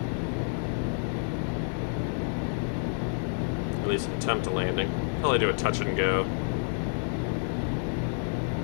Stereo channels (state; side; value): silent; right; digital silence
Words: At least attempt a landing. Probably do a touch and go.